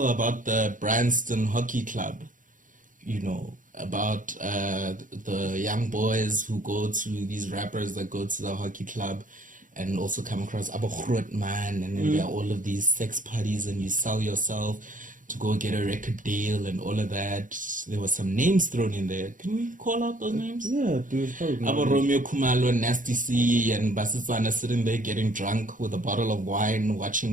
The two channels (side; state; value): left; late; 0.38 ms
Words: about the Branston Hockey Club. You know, about the young boys who go to these rappers that go to the hockey club and also come across Abu Groot man, and then there are all of these sex parties and you sell yourself to go get a record deal and all of that. There were some names thrown in there. Can we call out those names? Yeah, dude. Abu Romeo Kumalo and Nasty C and Basisana sitting there getting drunk with a bottle of wine